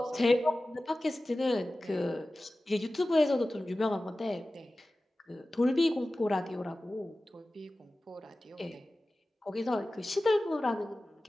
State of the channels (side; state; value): both; normal; correlation 0.96